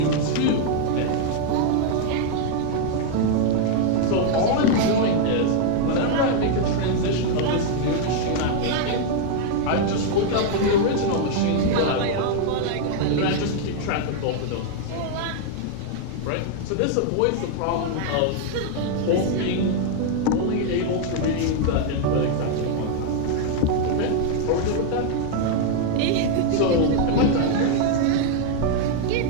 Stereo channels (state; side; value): different; both; correlation 0.00